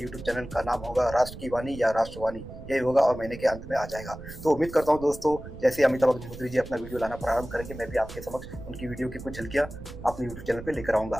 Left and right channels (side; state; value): right; noise; rumble, 13 dB below the sound